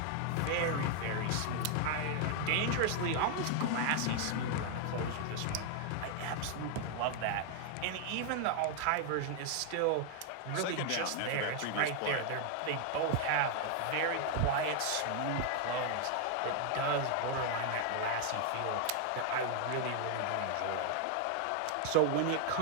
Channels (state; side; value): different; both; correlation 0.00